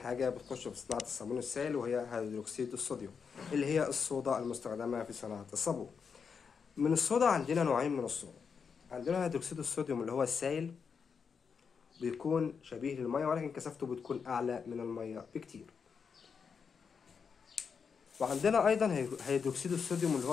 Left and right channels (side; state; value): right; quieter; 6.1 dB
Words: بتخش في صناعة الصابون السائل، وهي هيدروكسيد الصوديوم، اللي هي الصودا المستخدمة في صناعة الصابون. من الصودا عندنا نوعين من الصودا. عندنا هيدروكسيد الصوديوم اللي هو السائل، بيكون شبيه للمية ولكن كثافته بتكون أعلى من المية بكتير. وعندنا أيضا هيدروكسيد الصوديوم اللي